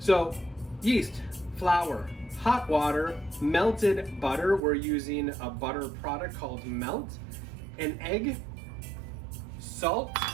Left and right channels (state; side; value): drops out; left; at 4.6 s